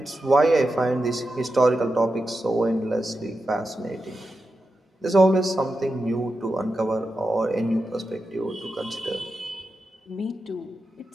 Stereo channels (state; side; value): normal; both; correlation 0.90